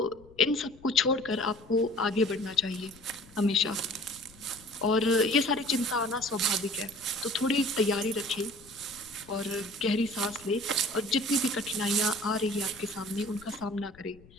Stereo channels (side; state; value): left; noise; rumble, 24 dB below the sound